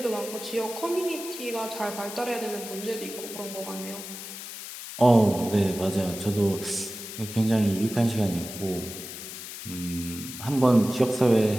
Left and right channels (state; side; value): noise; left; hiss, 10 dB below the sound